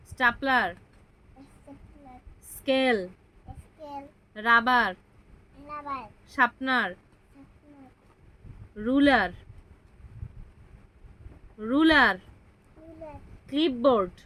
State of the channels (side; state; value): both; identical; correlation 1.00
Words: stapler, stapler, scale, scale, rubber, rubber, sharpener, sharpener, ruler, ruler, ruler, clipboard,